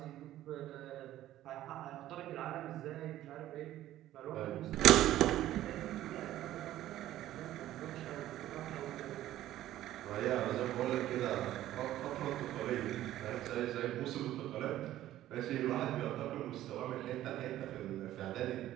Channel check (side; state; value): left; quieter; 13.7 dB